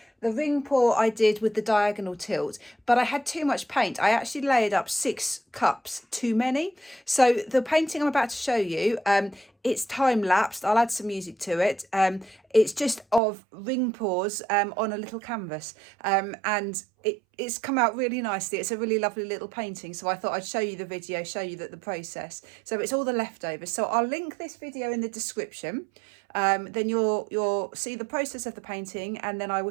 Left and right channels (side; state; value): left; drops out; at 13.2 s